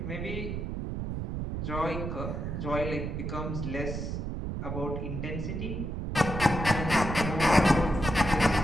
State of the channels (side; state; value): right; noise; rumble, 3 dB below the sound